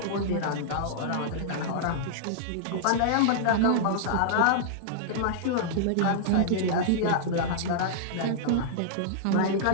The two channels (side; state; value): both; different; correlation -0.02